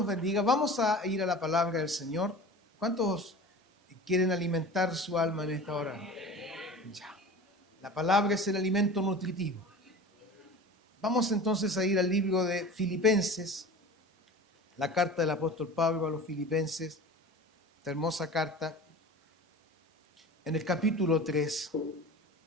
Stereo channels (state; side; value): normal; both; correlation 0.37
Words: bendiga. Vamos a ir a la palabra del Señor. ¿Cuántos quieren alimentar su alma en esta hora? Ya. La palabra es el alimento nutritivo. Vamos entonces a ir al libro de Filipenses, la carta del apóstol Pablo a los Filipenses, esta hermosa carta, en el capítulo 3.